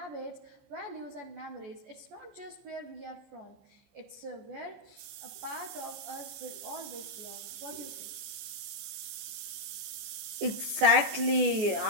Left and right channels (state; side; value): late; left; 14 ms